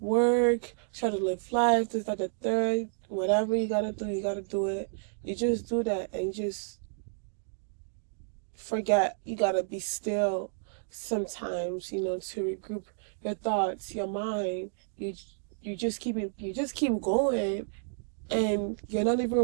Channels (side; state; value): left; silent; digital silence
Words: try to live life, this, that, the third, whatever you gotta do it. You just do that and you just forget. You gotta be still sometimes, you know, to regroup your thoughts, your mind. You you just keep going, and you're not